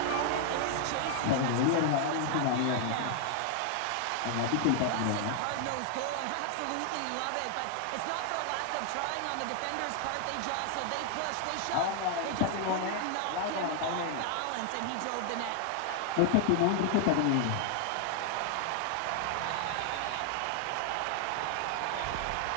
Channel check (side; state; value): both; different; correlation 0.00